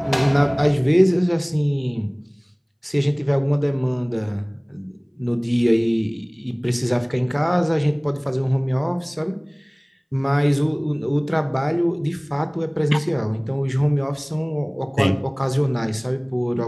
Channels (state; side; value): identical; both; correlation 1.00